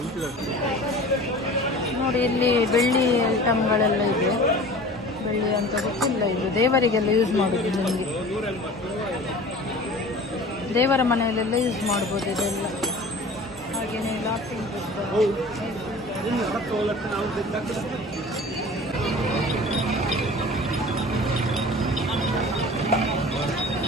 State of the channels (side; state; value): both; normal; correlation 0.41